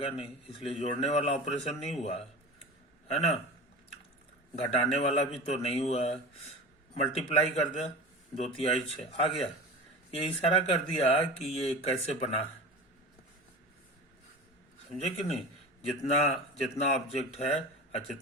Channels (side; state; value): both; normal; correlation 0.32